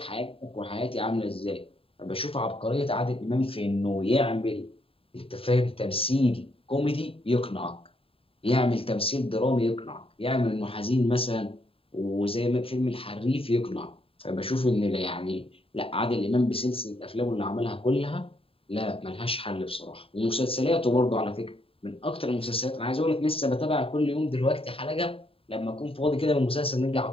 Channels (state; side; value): late; right; 0.27 ms